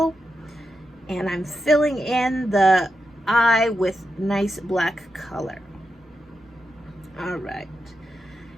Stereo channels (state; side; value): normal; both; correlation 0.87